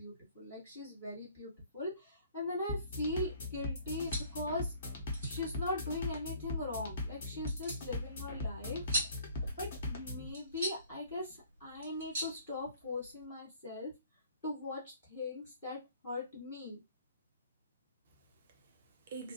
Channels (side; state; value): both; inverted; correlation -0.56